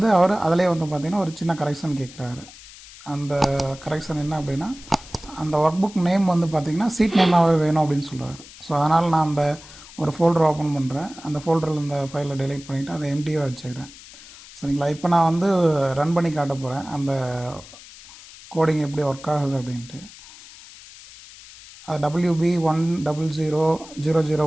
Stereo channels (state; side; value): noise; left; hiss, 19 dB below the sound